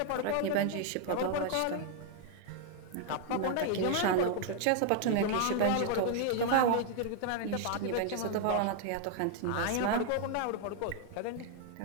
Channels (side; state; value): both; different; correlation 0.00